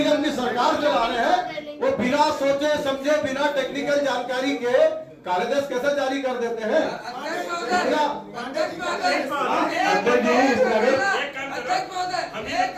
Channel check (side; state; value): both; identical; correlation 1.00